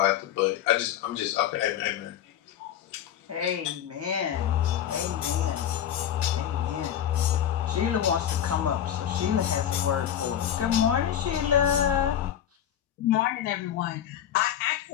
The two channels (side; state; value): right; quieter; 10.1 dB